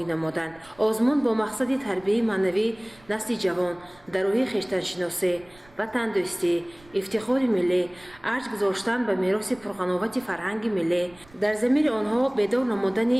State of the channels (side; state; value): right; noise; rumble, 27 dB below the sound